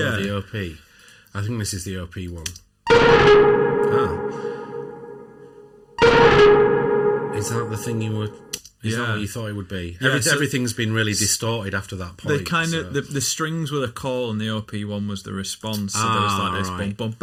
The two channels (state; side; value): identical; both; correlation 1.00